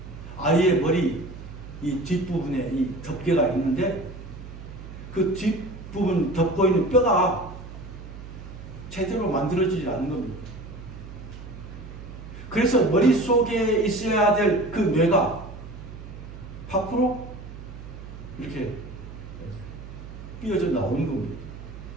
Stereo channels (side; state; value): right; noise; hum, 13 dB below the sound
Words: 아이의 머리 이 뒷부분에 이 덮개가 있는데 그 뒷부분 덮고 있는 뼈가 제대로 만들어지지 않는 겁니다. 그래서 머릿속에 있어야 될 그 뇌가 밖으로 이렇게 삐어져 나오는 겁니다.